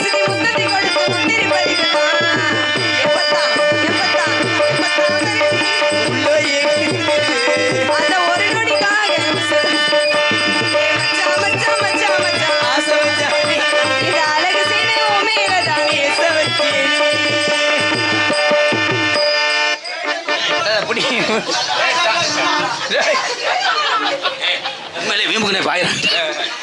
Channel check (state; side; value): identical; both; correlation 1.00